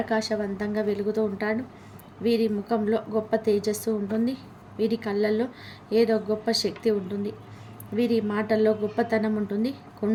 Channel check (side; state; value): both; identical; correlation 1.00